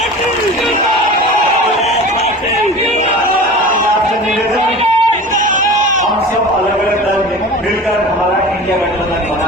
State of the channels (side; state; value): both; normal; correlation 0.35